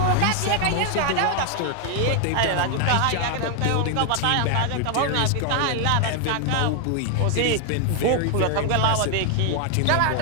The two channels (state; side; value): different; both; correlation 0.00